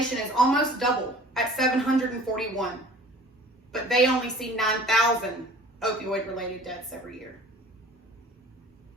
is almost double at 741, but they only see 9,000 opioid-related deaths every year.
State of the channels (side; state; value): both; normal; correlation 0.47